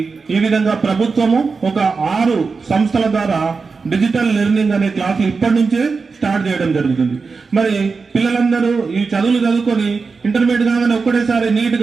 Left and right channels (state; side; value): quieter; left; 4.7 dB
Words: ఈ విధంగా ప్రభుత్వము ఒక 6 సంస్థల ద్వారా డిజిటల్ లెర్నింగ్ అనే క్లాసులు ఇప్పటి నుంచే స్టార్ట్ చేయడం జరుగుతుంది. మరి పిల్లలందరూ ఈ చదువులు చదువుకొని ఇంటర్మీడియట్ కాగానే ఒక్కటేసారి నీట్